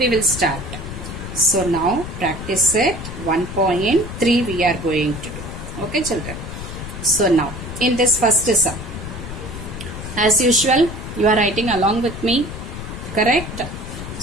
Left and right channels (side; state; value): left; noise; rumble, 9 dB below the sound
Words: will start. So now practice set 1.3 we are going to do. Okay, children. So now in this first sum, as usual, you are writing along with me, correct?